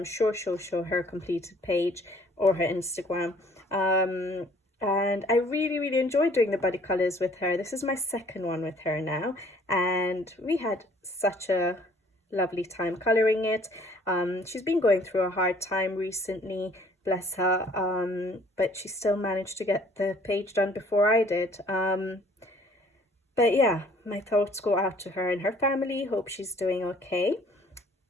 sure she'll show her completed page or her Instagram. And I really enjoyed doing the buddy colours with her. This is my second one with her now, and we had such a lovely time colouring it. She's been going through a hard time recently, bless her, but she still managed to get the page done before I did. But yeah, my thoughts go out to her and her family. Hope she's doing okay.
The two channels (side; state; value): both; normal; correlation 0.57